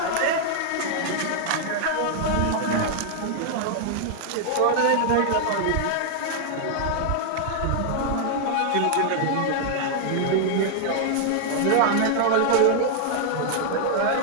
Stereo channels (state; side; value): different; both; correlation -0.01